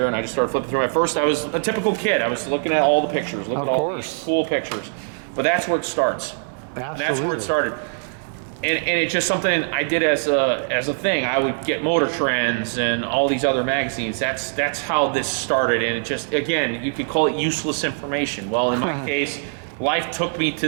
and I just started flipping through. At first, I was a typical kid. I was looking at all the pictures, looking at all these cool pictures. But that's where it starts. Absolutely. That's where it started. And it's just something I did as a thing. I would get Motor Trends and all these other magazines. That's how this started. And it just, again, you could call it useless information. Well, in my case, life took me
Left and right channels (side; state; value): left; silent; digital silence